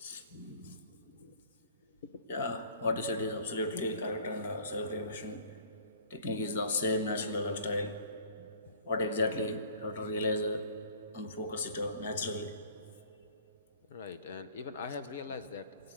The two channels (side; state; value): both; inverted; correlation -0.51